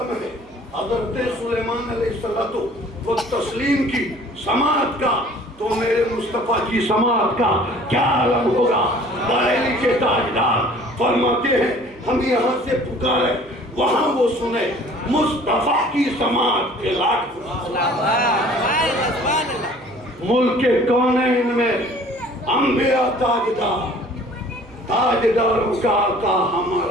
ہے حضرت سلیمان علیہ السلام کو تسلیم کی سماعت کا، تو میرے مصطفیٰ کی سماعت کا کیا عالم ہوگا؟ بریلی کے تاجدار فرماتے ہیں ہم یہاں سے پکارے وہاں وہ سنے مصطفیٰ کی سماعت کے لاکھ ملک کونین میں انبیاء تاجدار، تاجداروں کا آقا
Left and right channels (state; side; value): noise; right; hum, 27 dB below the sound